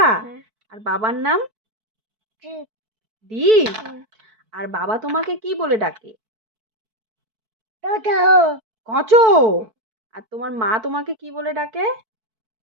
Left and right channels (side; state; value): left; late; 4.6 ms